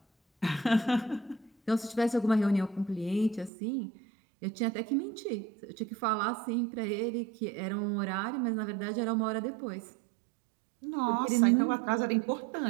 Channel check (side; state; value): left; drops out; at 3.5 s